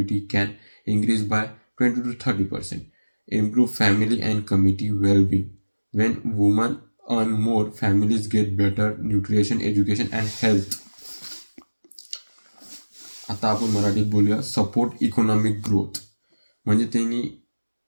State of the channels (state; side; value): inverted; both; correlation -1.00